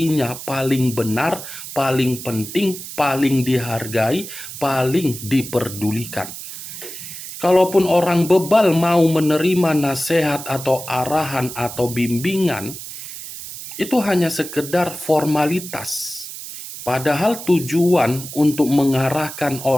paling benar, paling penting, paling dihargai, paling diperdulikan. Kalaupun orang bebal mau menerima nasihat atau arahan atau bimbingan, itu hanya sekedar formalitas. Padahal tujuan untuk mengarahkan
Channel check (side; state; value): right; noise; hiss, 11 dB below the sound